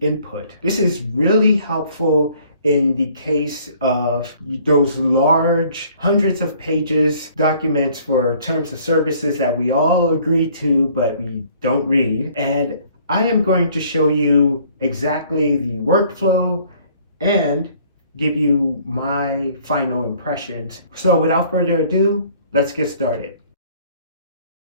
input. This is really helpful in the case of those large hundreds of pages documents for terms of services that we all agree to but we don't read. And I am going to show you exactly the workflow and give you my final impressions. So without further ado, let's get started.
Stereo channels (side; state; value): both; inverted; correlation -0.58